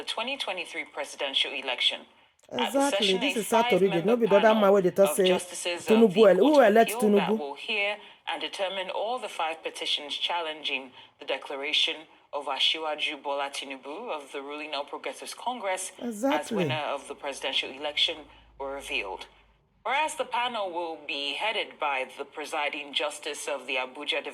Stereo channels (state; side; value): identical; both; correlation 1.00